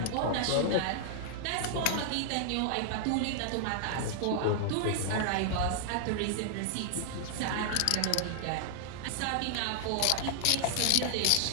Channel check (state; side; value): different; both; correlation -0.01